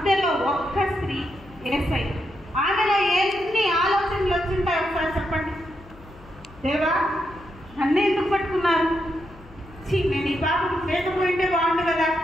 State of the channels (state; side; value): noise; left; hum, 22 dB below the sound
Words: ఒక్క స్త్రీ, యేసయ్య. ఆమెలో ఎన్ని ఆలోచనలు వచ్చింటాయి ఒకసారి చెప్పండి. దేవా, నన్ను ఎందుకు పట్టుకున్నారు? నేను ఈ పాపం లేకపోయింటే బాగుండు కదా,